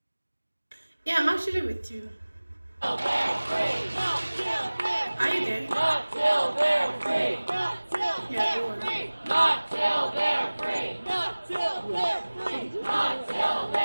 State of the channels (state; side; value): inverted; both; correlation -1.00